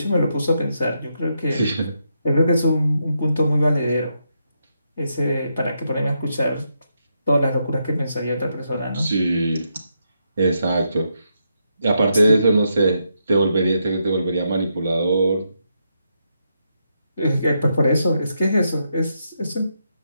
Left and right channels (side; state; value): both; inverted; correlation -0.81